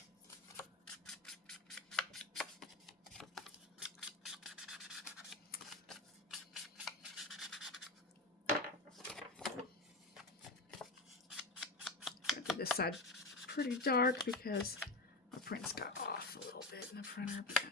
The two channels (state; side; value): quieter; right; 3.1 dB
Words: I did this side pretty dark because my prints got off a little bit in the printer, but